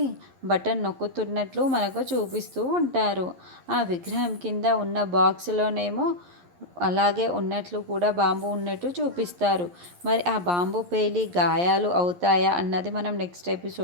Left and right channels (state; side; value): late; left; 11 ms